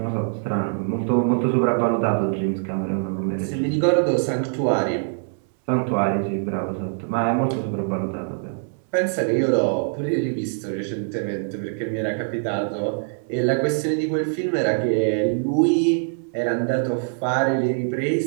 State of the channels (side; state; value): left; silent; digital silence